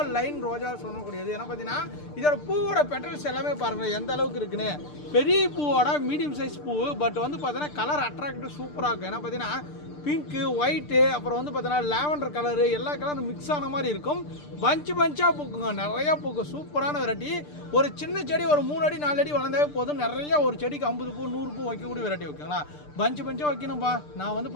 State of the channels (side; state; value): right; late; 6.7 ms